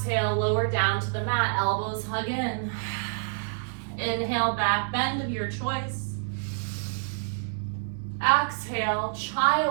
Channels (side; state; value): left; silent; 60 dB below the other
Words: lower down to the mat, elbows hug in. Inhale, back bend of your choice. Exhale,